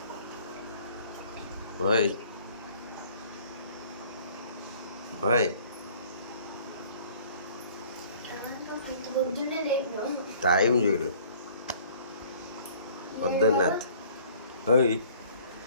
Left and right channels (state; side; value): inverted; both; correlation -0.53